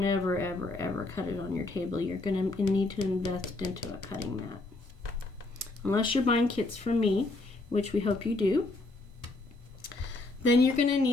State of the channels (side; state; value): right; quieter; 3.1 dB